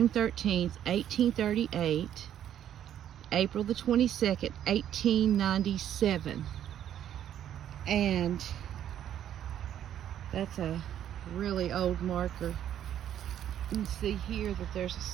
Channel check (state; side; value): quieter; left; 10.6 dB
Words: 13th, 1838, April the 22nd, 1897. And that's a really old marker. You can see here that there's a